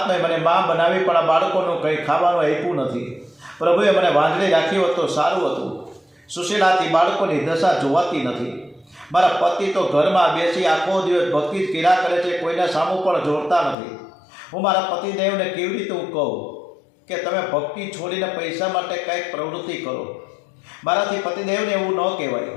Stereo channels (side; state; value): right; drops out; at 13.8 s